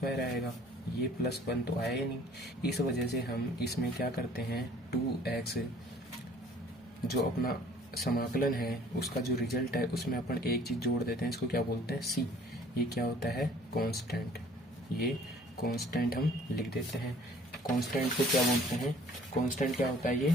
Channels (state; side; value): normal; both; correlation 0.55